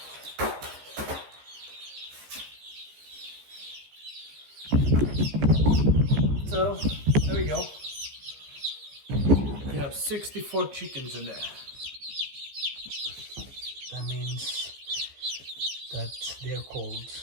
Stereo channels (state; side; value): late; left; 15 ms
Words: So there we go. We have 64 chickens in there. That means that they're cold.